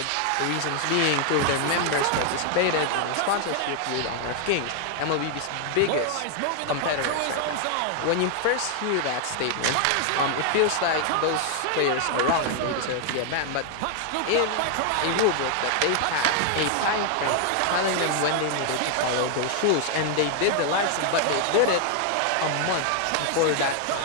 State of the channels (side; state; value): both; different; correlation 0.00